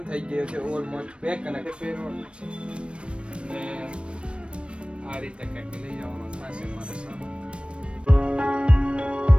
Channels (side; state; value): left; late; 0.059 ms